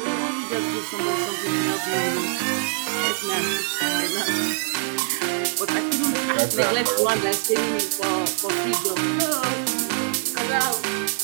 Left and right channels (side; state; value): left; silent; 63 dB below the other